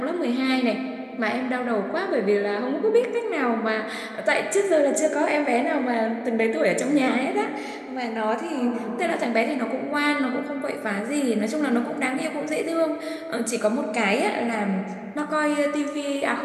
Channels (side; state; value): both; identical; correlation 1.00